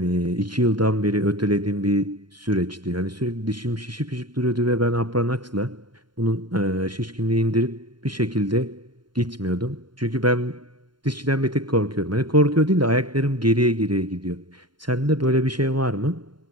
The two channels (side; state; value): left; late; 0.72 ms